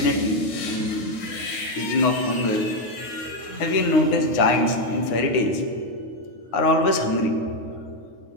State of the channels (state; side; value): late; right; 9.6 ms